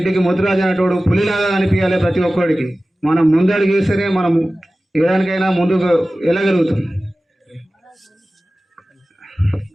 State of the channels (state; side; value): normal; both; correlation 0.96